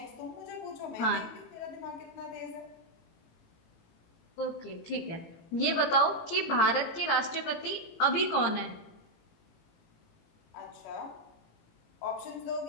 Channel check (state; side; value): late; right; 17 ms